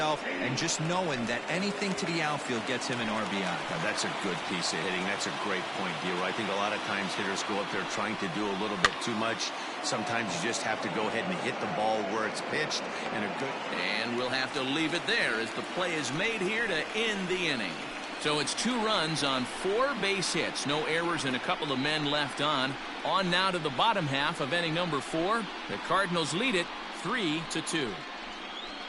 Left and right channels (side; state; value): both; identical; correlation 1.00